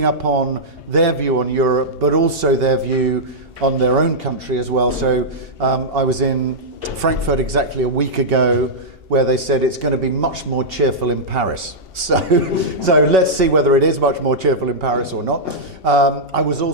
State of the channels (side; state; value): left; late; 2.7 ms